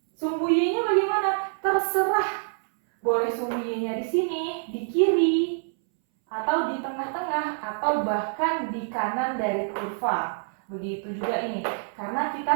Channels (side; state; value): left; silent; 61 dB below the other